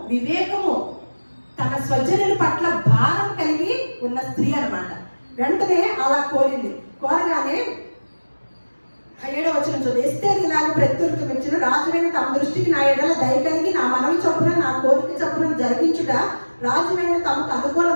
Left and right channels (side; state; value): both; inverted; correlation -1.00